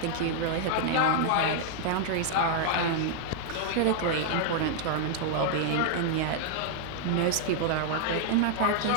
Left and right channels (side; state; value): both; different; correlation 0.00